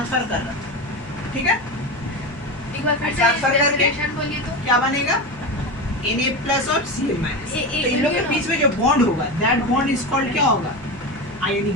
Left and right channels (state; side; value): noise; left; hum, 21 dB below the sound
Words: कर रहा है। ठीक है, एक बार फिर ट्रांसफर करके बोलिए तो क्या बनेगा, Na प्लस और Cl माइनस। तो इन लोग के बीच में जो बॉन्ड होगा, दैट बॉन्ड इज कॉल्ड क्या होगा, आयोनिक